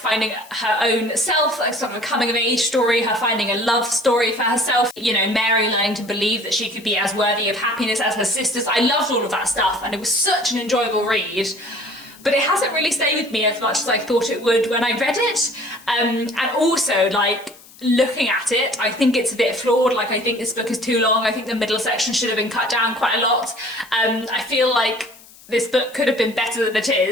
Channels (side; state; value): left; noise; hiss, 23 dB below the sound